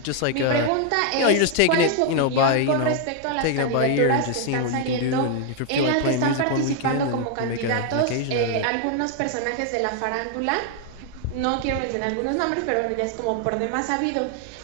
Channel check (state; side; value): different; both; correlation 0.00